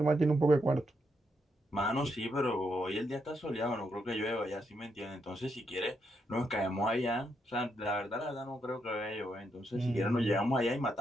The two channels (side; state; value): both; normal; correlation 0.79